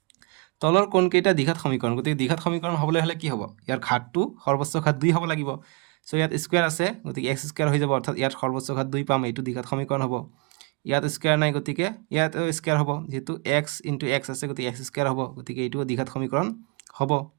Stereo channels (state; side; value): quieter; left; 31.5 dB